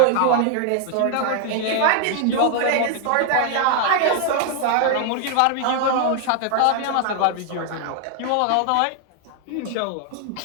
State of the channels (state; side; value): different; both; correlation 0.00